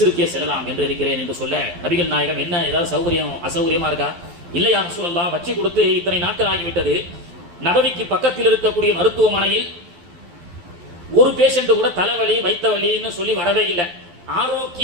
செல்லலாம் என்று இருக்கிறேன் என்று சொல்ல, நபிகள் நாயகம், என்ன ஏதாவது சௌகரியம் அசௌகரியமா இருக்கா? இல்லை யா ரசூலல்லாஹ், வச்சு கொடுத்து இத்தனை நாட்கள் ஆகிவிட்டது, நபவிக்கு பக்கத்தில் இருக்கக்கூடிய மருத்துவமனையில் ஒரு பேஷண்ட் கூட தலைவலி வைத்த வலின்னு சொல்லி வரவே இல்லை.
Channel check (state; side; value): late; left; 12 ms